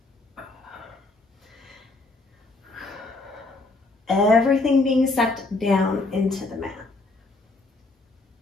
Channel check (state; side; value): quieter; right; 3.1 dB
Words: Everything being sucked down into the mat.